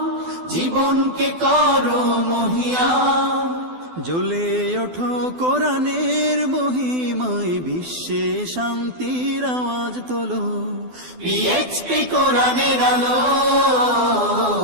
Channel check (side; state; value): left; late; 12 ms